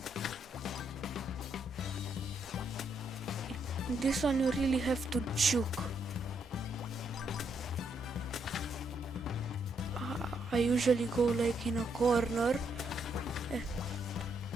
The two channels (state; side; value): normal; both; correlation 0.76